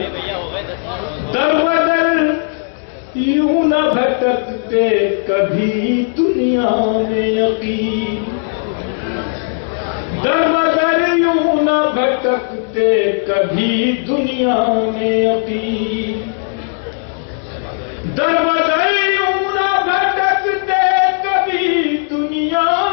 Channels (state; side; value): silent; right; digital silence